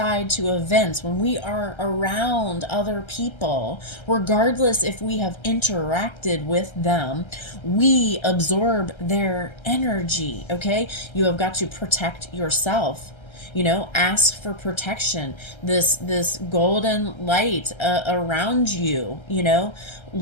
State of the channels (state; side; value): late; right; 1.3 ms